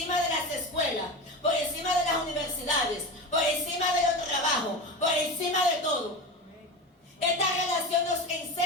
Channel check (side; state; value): both; normal; correlation 0.25